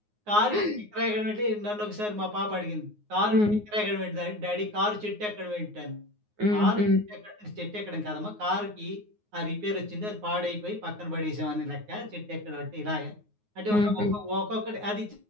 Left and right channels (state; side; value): late; left; 9.5 ms